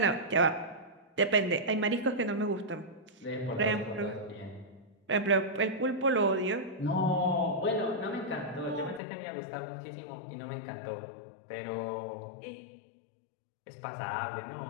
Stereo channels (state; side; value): drops out; right; at 9.0 s